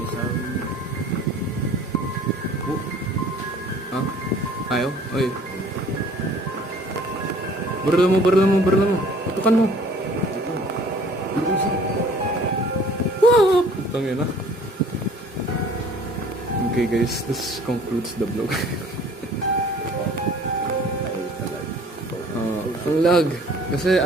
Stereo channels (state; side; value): normal; both; correlation 0.52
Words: sorry. Ha? Ayaw? Uy. Barla mo. Tutukan mo. Wow! Putang yun ah. Okay guys, this concludes the vlog. Ang lag. Kasi